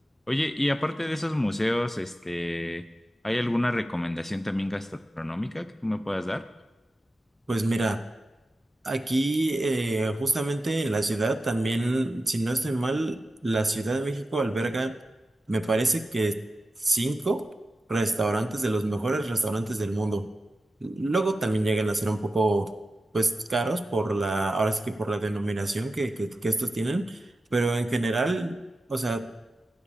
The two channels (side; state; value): both; normal; correlation 0.93